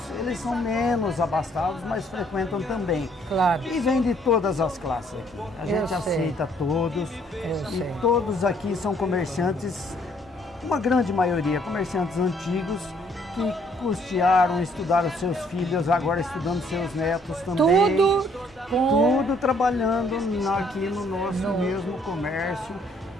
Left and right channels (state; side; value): normal; both; correlation 0.65